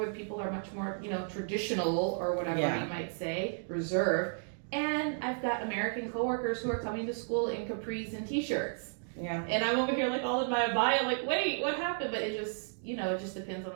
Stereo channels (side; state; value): left; silent; digital silence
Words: people are much more, traditional or whatever Yeah. you might say, reserved. And I've got American coworkers who are coming to school in capris and t-shirts. Yeah. And I'm over here like all in my bio, like, wait, what happened? But it just, it just depends on